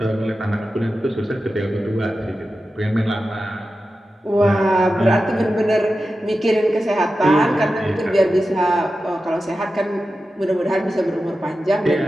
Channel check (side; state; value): both; normal; correlation 0.92